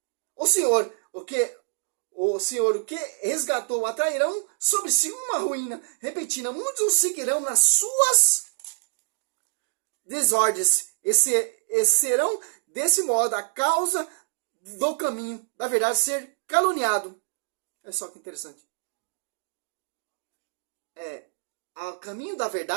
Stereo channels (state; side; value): silent; left; digital silence